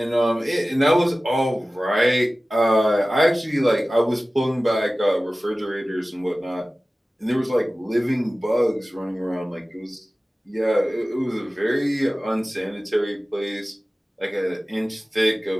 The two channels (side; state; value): both; normal; correlation 0.97